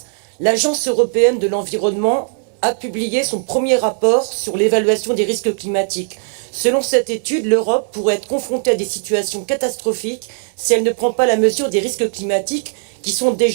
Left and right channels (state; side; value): silent; left; digital silence